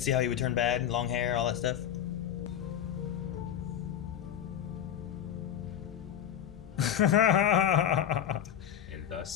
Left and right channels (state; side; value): quieter; right; 9.7 dB